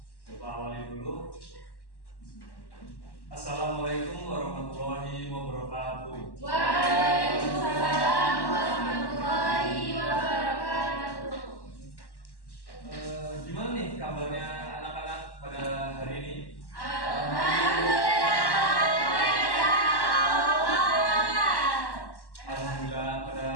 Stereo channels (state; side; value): late; right; 1.1 ms